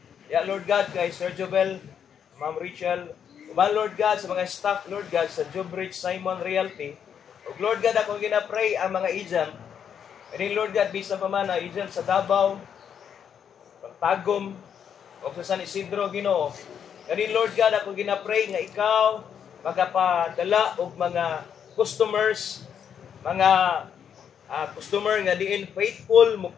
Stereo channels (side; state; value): right; quieter; 8.1 dB